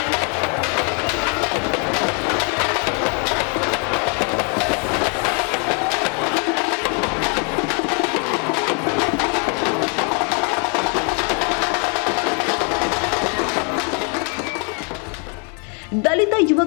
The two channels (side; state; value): right; quieter; 38.1 dB